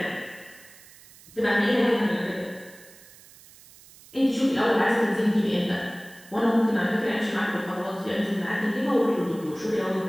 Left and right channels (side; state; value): right; noise; hiss, 23 dB below the sound